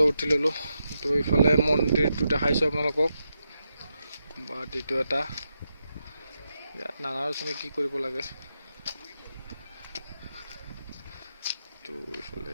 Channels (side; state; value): both; inverted; correlation -0.85